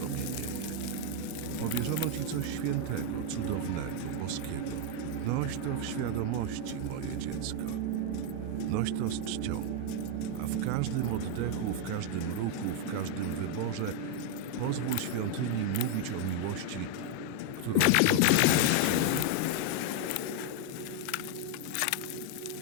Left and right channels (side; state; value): both; different; correlation 0.01